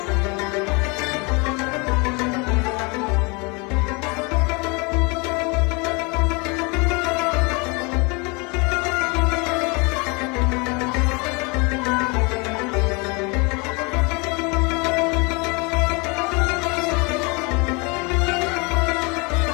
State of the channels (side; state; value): right; quieter; 29.7 dB